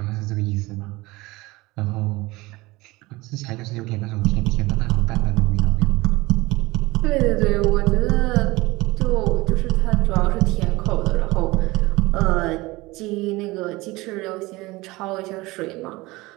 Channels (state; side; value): quieter; left; 21.2 dB